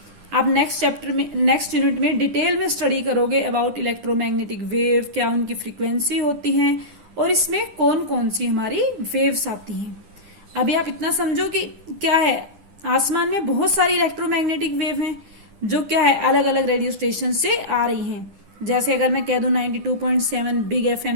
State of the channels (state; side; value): late; left; 10 ms